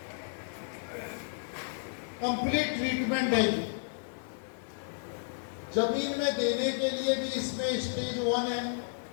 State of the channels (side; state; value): right; silent; digital silence